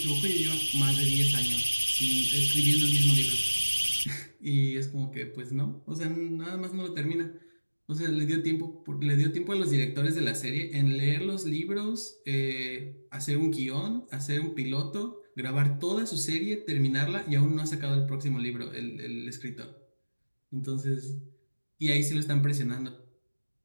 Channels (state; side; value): inverted; both; correlation -1.00